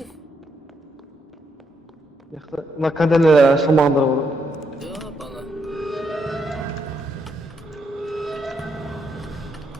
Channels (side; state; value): both; normal; correlation 0.77